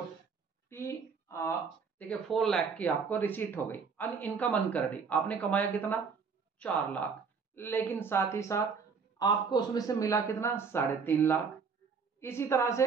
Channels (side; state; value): left; quieter; 5.5 dB